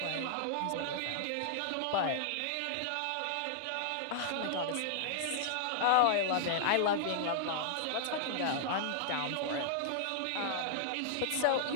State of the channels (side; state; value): both; different; correlation -0.01